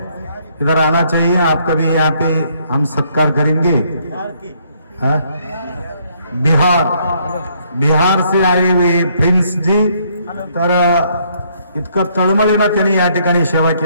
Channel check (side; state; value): both; inverted; correlation -0.68